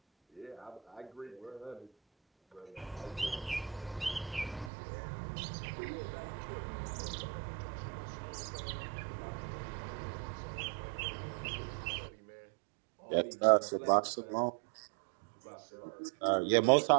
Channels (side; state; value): left; drops out; at 4.7 s